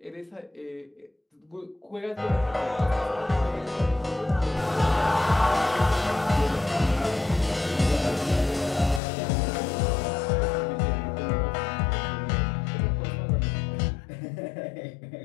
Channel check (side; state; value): right; drops out; at 9.0 s